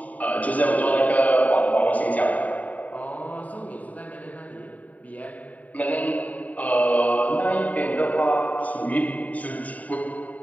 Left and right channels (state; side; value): late; right; 0.072 ms